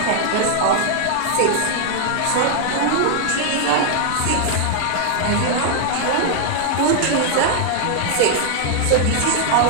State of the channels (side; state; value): both; different; correlation 0.00